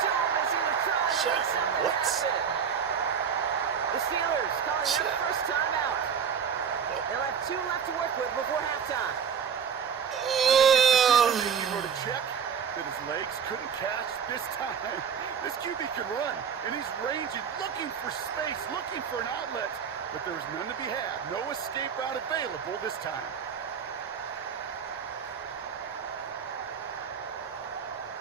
Thomas in the try. Shit, what? The Steelers calling Shit. their first time out. They'll have 2 left to work with before halftime. He wrote a check that his legs couldn't catch this time. This QB can run, and he's ranging, looking for space, looking for an outlet. But there was none to be had. No escape route available this time.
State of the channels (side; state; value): left; quieter; 7.2 dB